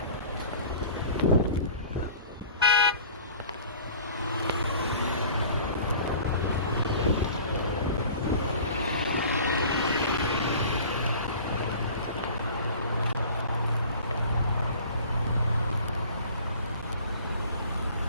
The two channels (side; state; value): both; inverted; correlation -0.44